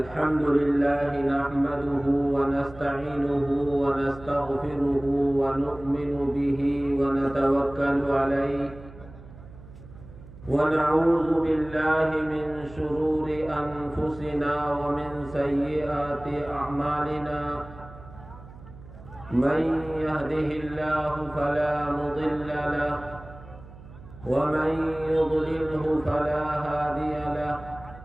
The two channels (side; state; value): right; noise; hum, 18 dB below the sound